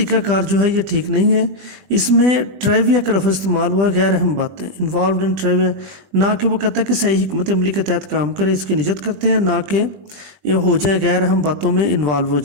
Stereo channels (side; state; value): left; late; 20 ms